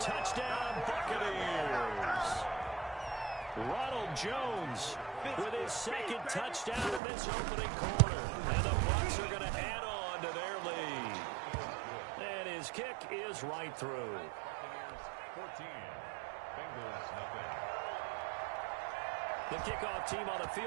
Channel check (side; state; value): left; drops out; at 7.0 s